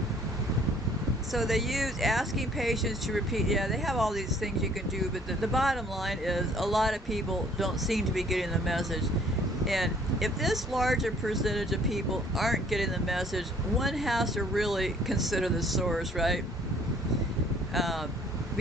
so they use asking patients to repeat. Yeah, they have all these things you can do, but the bottom line is a lot of people don't seem to be getting the message. And if this larger percentage of people aren't getting the message, one has to really consider the source, right?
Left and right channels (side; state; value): both; normal; correlation 0.58